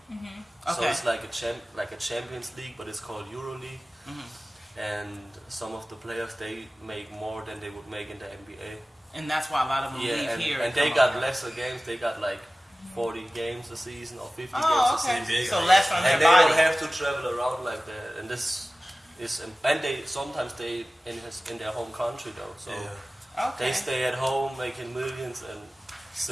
So it's like a Champions League, but it's called EuroLeague. And some of the players, they make more than they would make in the NBA. And that's why a lot of them leave here. And they got lesser games. They got like 40 games a season or 50 games Oh, a okay. season. So less on their And they body. don't have to travel around like that. And this is, and they sometimes they in their home country though. So Okay. they stay at home making millions and.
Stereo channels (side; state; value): both; normal; correlation 0.97